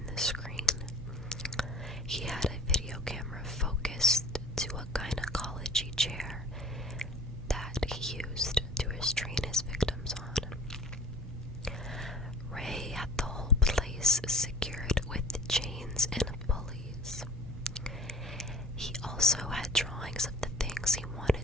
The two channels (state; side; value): normal; both; correlation 0.47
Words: the screen. He had a video camera focused to a gynecology chair that he used to restrain his victims on. Ray had the whole place secured with chains and pulleys. He also had drawings of the things he